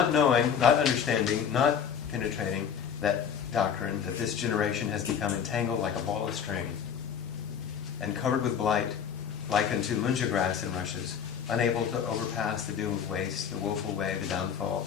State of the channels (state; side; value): quieter; right; 7.7 dB